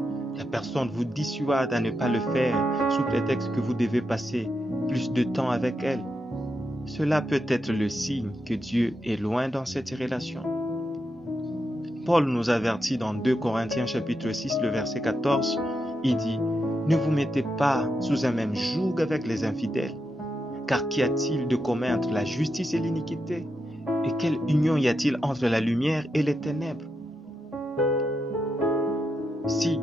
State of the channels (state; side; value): normal; both; correlation 0.85